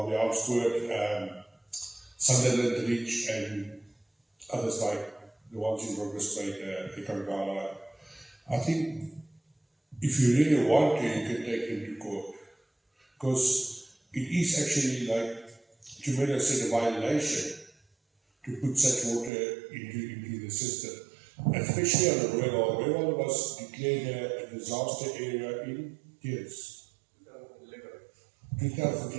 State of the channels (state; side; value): drops out; left; at 19.3 s